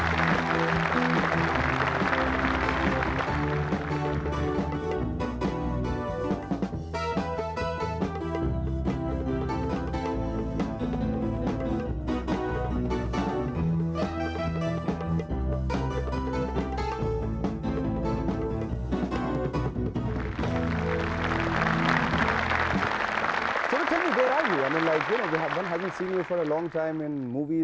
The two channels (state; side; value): identical; both; correlation 1.00